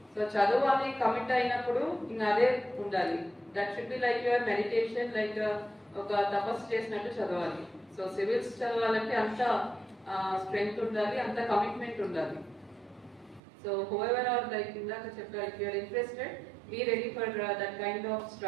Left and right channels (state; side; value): drops out; left; at 13.4 s